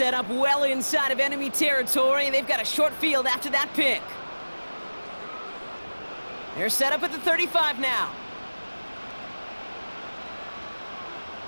up well inside of enemy territory, and they've got a short field after that pick. They're set up at the 35 now.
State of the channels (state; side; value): inverted; both; correlation -1.00